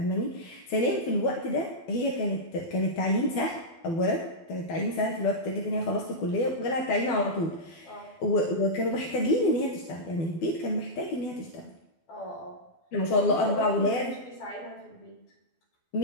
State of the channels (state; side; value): late; right; 12 ms